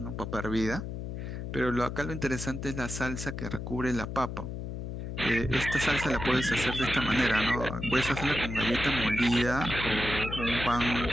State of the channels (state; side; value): noise; left; hum, 6 dB below the sound